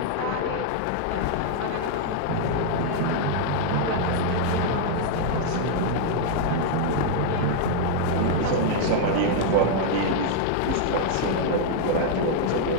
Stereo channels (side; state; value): both; different; correlation 0.00